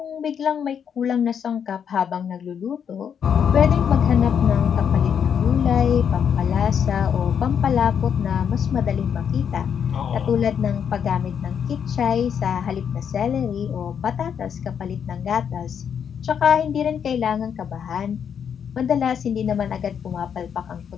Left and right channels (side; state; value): right; quieter; 7.8 dB